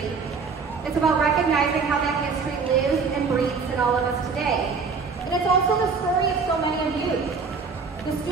It's about recognizing how that history lives and breathes in all of us today. And it's also the story of so many of you, the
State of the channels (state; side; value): quieter; left; 5.0 dB